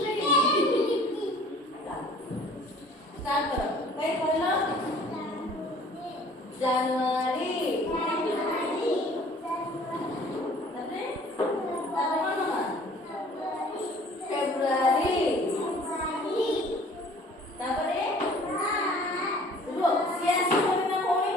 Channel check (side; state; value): both; normal; correlation 0.51